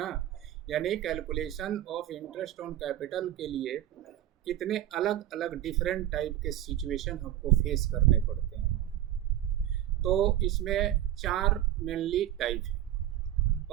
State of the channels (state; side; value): quieter; left; 12.6 dB